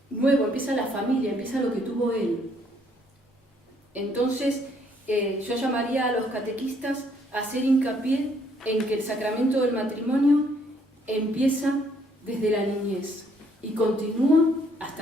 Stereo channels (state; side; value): normal; both; correlation 0.67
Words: nuevo, empieza la familia, empieza lo que tuvo él. Entonces, yo llamaría a los catequistas a hacer hincapié en que el sacramento del matrimonio empieza desde la niñez y continúa